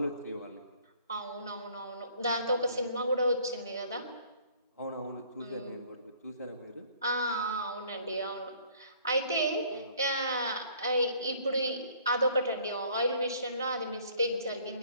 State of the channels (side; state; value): both; inverted; correlation -0.57